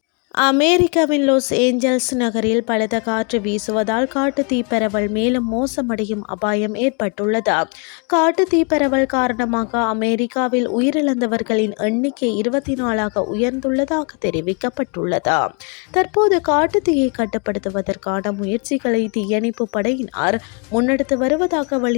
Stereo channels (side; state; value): right; quieter; 36.5 dB